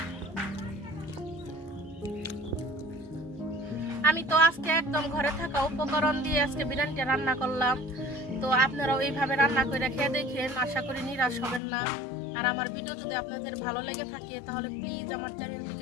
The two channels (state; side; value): drops out; right; at 11.6 s